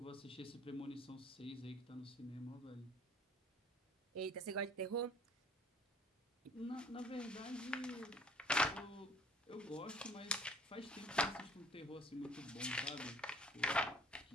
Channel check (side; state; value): both; normal; correlation 0.54